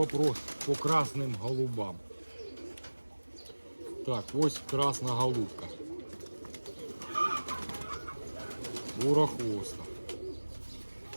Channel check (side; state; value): both; inverted; correlation -1.00